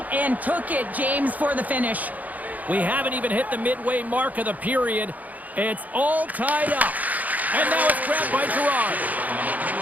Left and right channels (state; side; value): late; left; 0.078 ms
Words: and took it, James, for the finish. We haven't even hit the midway mark of the period. It's all tied up. And now it's grabbed by Girard.